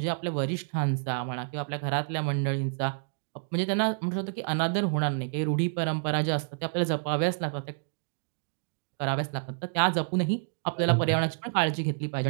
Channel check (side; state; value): left; silent; digital silence